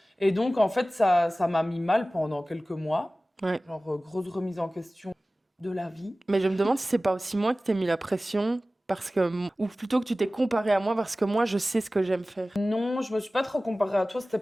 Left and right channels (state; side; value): normal; both; correlation 0.97